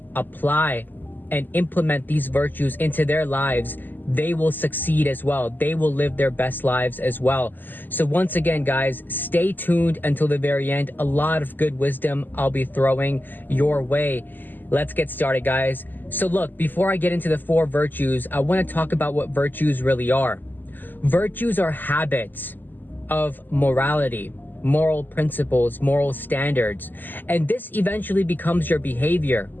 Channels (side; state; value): right; late; 0.089 ms